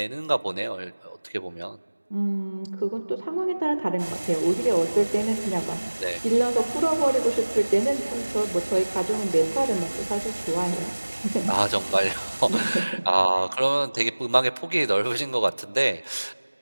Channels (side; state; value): both; inverted; correlation -1.00